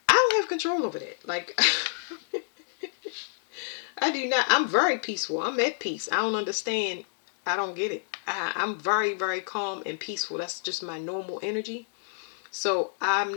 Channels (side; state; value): right; silent; digital silence